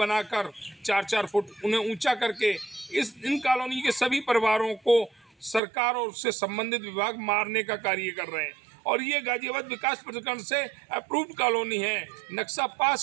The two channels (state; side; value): drops out; left; at 5.6 s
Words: 4-4 फुट उन्हें ऊंचा करके इन कॉलोनी के सभी परिवारों को सरकार और उससे संबंधित विभाग मारने का कार्य कर रहे हैं। और ये गाजियाबाद विकास प्राधिकरण से अप्रूव्ड कॉलोनी है, नक्शा पास